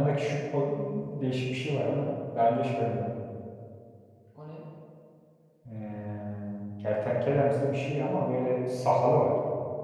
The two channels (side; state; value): both; identical; correlation 1.00